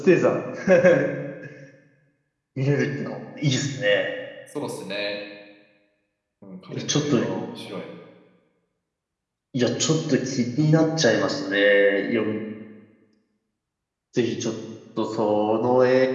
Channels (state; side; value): identical; both; correlation 1.00